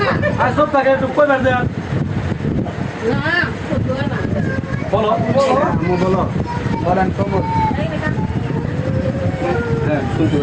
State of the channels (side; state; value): both; identical; correlation 1.00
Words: আর সব টাকা একটু কই বের দেন। বলো, বলো বলেন কবল। হ্যাঁ, শুনতে